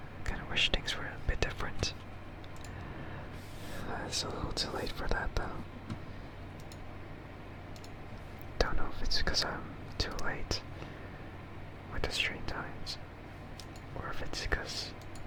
things were a bit different. It's a little too late for that, though. Don't know if it's because I'm too late with the stream times, or if it's because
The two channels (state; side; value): identical; both; correlation 1.00